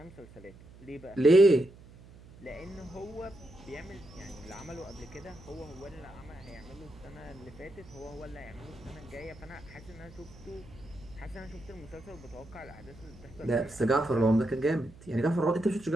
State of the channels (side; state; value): right; noise; hum, 20 dB below the sound